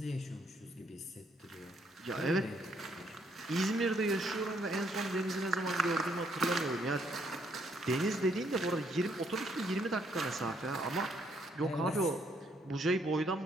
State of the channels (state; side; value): normal; both; correlation 0.70